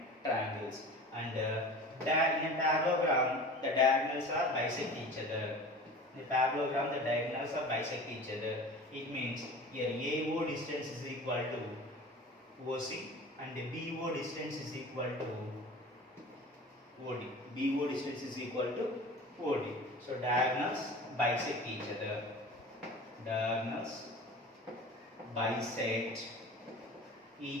triangles, and in a parallelogram, the diagonals are bisect each other. In a parallelogram, the diagonals are bisect each other. It means here AO distance is equal to OC, and BO distance is equal to OD. BO distance is equal to OD. So diagonals bisect each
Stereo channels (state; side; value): normal; both; correlation 0.38